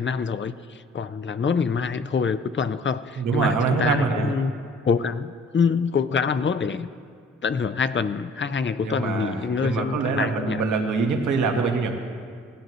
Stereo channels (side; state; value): both; normal; correlation 0.52